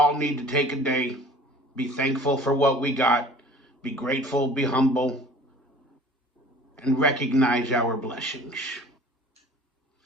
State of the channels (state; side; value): normal; both; correlation 0.46